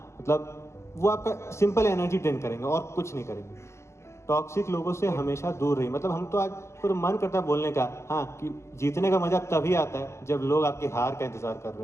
मतलब वो आपका सिंपल एनर्जी ड्रेन करेंगे और कुछ नहीं करेंगे। टॉक्सिक लोगों से हमेशा दूर रहिए। मतलब हम तो आज पूरा मन करता है बोलने का, हाँ, कि जीतने का मजा तभी आता है जब लोग आपकी हार का इंतजार कर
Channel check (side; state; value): right; late; 0.13 ms